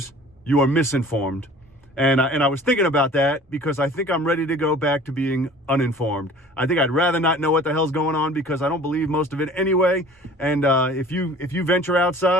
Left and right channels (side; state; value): both; normal; correlation 0.47